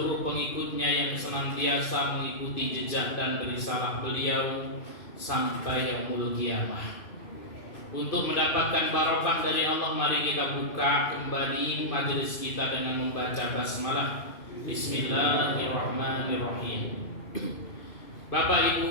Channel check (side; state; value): right; late; 2.5 ms